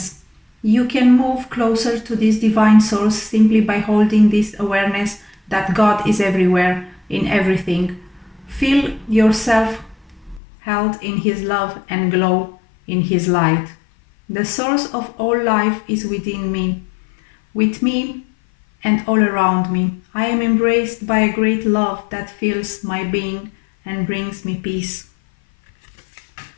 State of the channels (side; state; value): right; drops out; at 10.4 s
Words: You can move closer to this divine source simply by holding this awareness that God is everywhere, in everything. Feel yourself held in His love and glow in His light. The source of all life is within me, with me and all around me. I am embraced by a great love that fills my being and brings me peace.